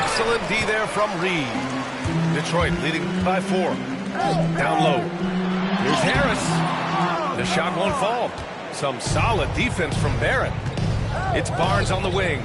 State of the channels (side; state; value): both; identical; correlation 1.00